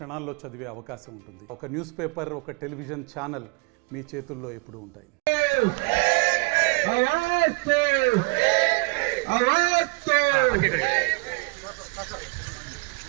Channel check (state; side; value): quieter; left; 29.5 dB